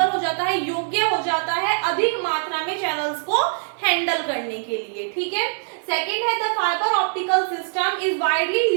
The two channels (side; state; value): left; silent; digital silence